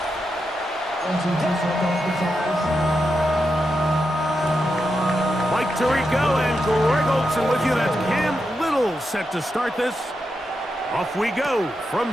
Mike Tirico and Greg Olsen with you. That's Cam Little set to start this. Off we go from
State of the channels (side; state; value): both; normal; correlation 0.86